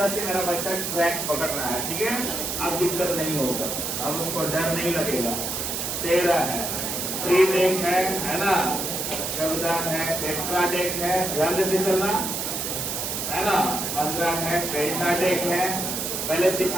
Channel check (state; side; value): noise; right; hiss, 3 dB below the sound